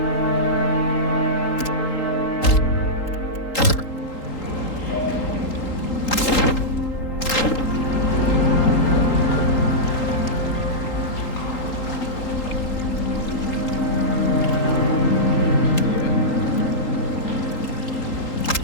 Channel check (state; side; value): late; right; 3.8 ms